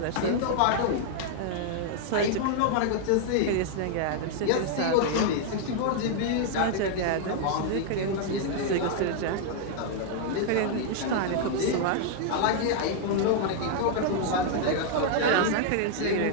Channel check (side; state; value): both; different; correlation 0.00